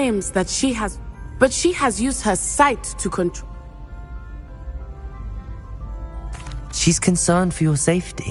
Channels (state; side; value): identical; both; correlation 1.00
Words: that she has... But she has used her sight to control... She's concerned for your